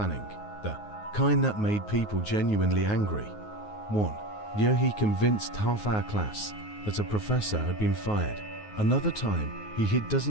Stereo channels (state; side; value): late; right; 9.5 ms